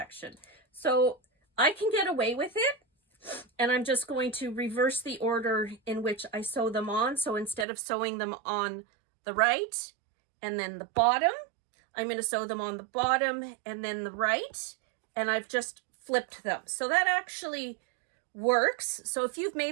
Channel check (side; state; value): left; drops out; at 7.7 s